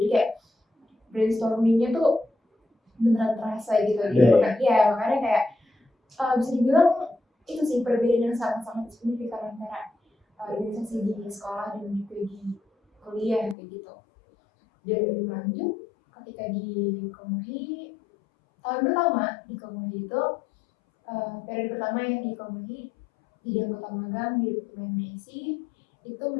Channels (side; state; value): right; drops out; at 13.6 s